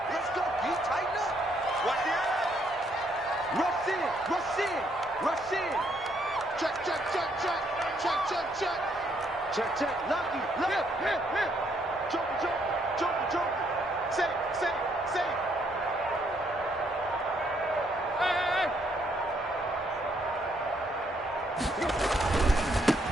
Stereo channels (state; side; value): normal; both; correlation 0.71